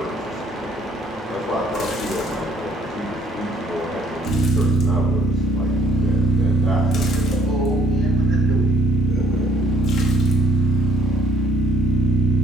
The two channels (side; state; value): both; normal; correlation 0.64